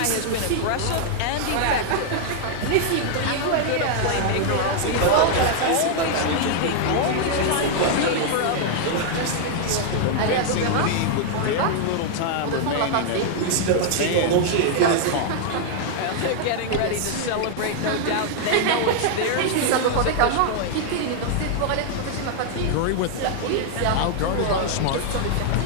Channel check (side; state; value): both; different; correlation 0.00